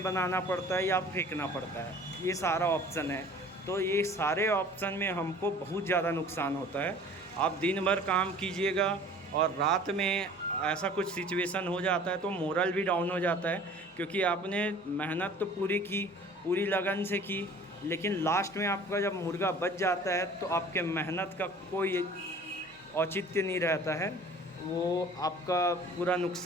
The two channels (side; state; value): both; normal; correlation 0.47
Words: बनाना पड़ता है या फेंकना पड़ता है। ये सारा ऑप्शन है। तो ये सारे ऑप्शन में हमको बहुत ज़्यादा नुकसान होता है। आप दिन भर काम कीजिएगा और रात में ऐसा कुछ सिचुएशन हो जाता है तो मोरल भी डाउन हो जाता है, क्योंकि आपने मेहनत तो पूरी की, पूरी लगन से की, लेकिन लास्ट में आपका जब मुर्गा बच जाता है तो आपके मेहनत का कोई औचित्य नहीं रहता है, वो आपका पूरा